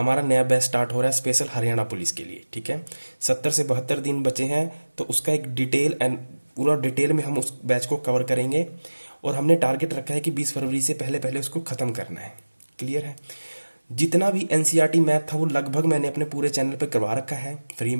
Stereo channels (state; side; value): inverted; both; correlation -1.00